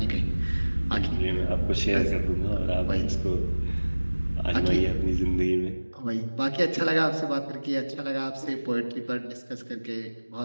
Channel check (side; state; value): both; inverted; correlation -1.00